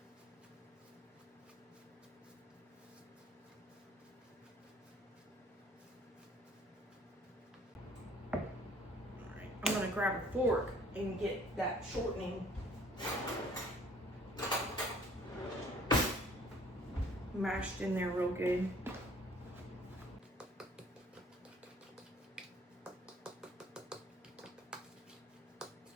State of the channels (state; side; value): normal; both; correlation 0.56